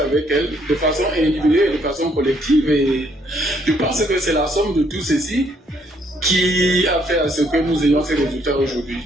elles de façon individuelle et de façon collective. Et je pense que c'est la somme de tout ceci qui a fait à ce que nous ayons ces résultats aujourd'hui.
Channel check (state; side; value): normal; both; correlation 0.68